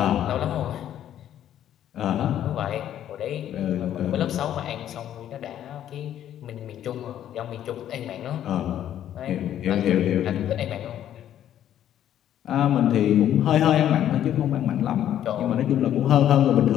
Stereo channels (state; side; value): quieter; right; 11.0 dB